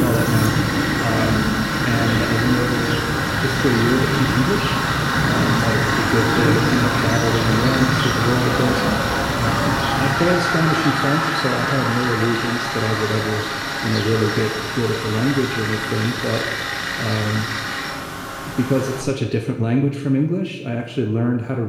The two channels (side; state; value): both; identical; correlation 1.00